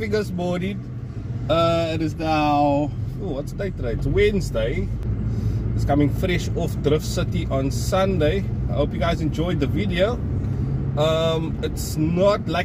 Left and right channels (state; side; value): identical; both; correlation 1.00